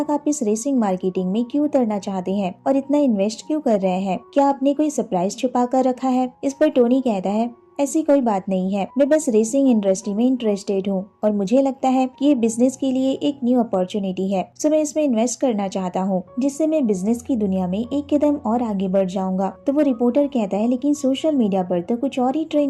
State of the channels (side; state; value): both; identical; correlation 1.00